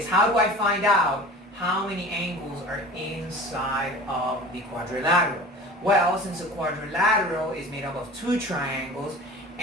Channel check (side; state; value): both; normal; correlation 0.39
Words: how do I find out how many angles are inside of the quadrilateral? Well, since a quadrilateral is made up of 2 triangles,